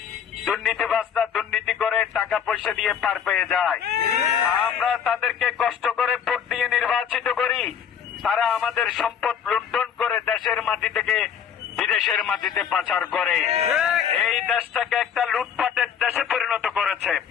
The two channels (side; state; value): right; quieter; 8.0 dB